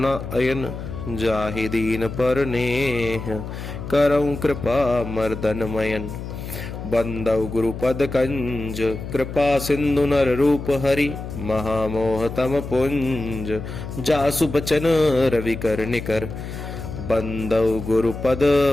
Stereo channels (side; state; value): left; noise; hum, 8 dB below the sound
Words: अयन। जाहि दीन पर नेह करऊं कृपा मर्दन मयन। बंदौ गुरुपद कंज कृपा सिंधु नर रूप हरि। महामोह तम पुंज जासु बचन रवि कर निकर। बंदौ गुरुपद